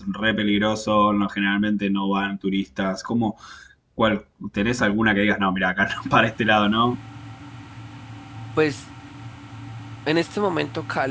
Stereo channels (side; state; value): both; identical; correlation 1.00